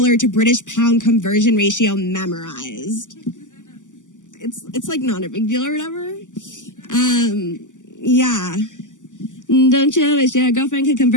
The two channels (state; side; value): late; right; 0.87 ms